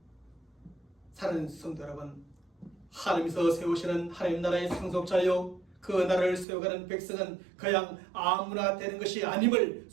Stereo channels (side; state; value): left; drops out; at 6.5 s